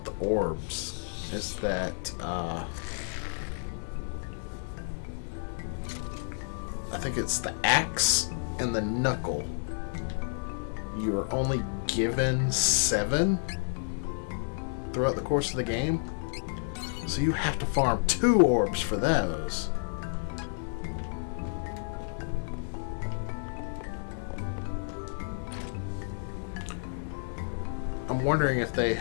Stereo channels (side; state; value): right; silent; digital silence